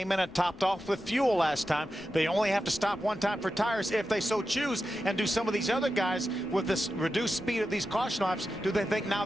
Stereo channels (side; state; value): left; noise; rumble, 23 dB below the sound